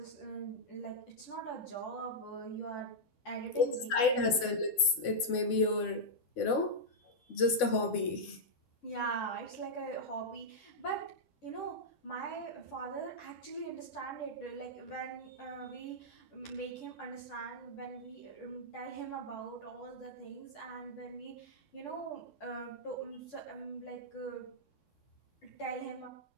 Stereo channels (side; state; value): right; late; 3.6 ms